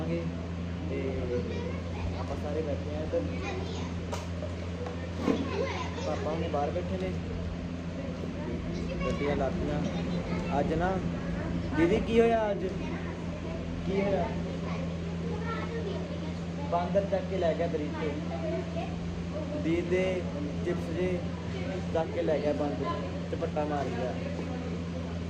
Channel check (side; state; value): both; identical; correlation 1.00